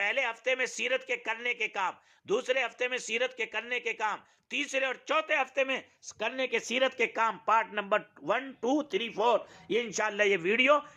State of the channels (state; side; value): identical; both; correlation 1.00